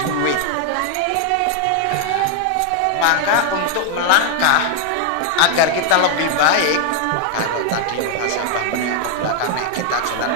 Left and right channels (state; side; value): different; both; correlation 0.00